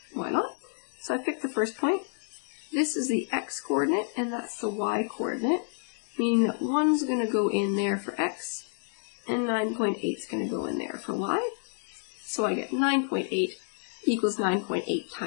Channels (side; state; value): right; silent; 58 dB below the other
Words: why not? So I picked the first point. This is the x coordinate, and that's the y coordinate, meaning that 1's going to go in there for x, and 9.8 is going to go in there for y. So I get 9.8 equals 9.8